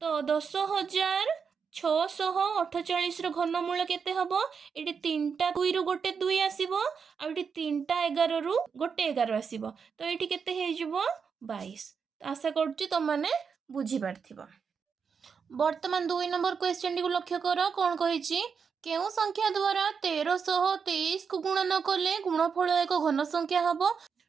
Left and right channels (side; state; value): left; quieter; 6.1 dB